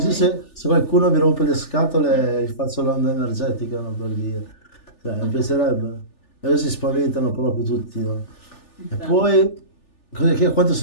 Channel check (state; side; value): late; right; 3.4 ms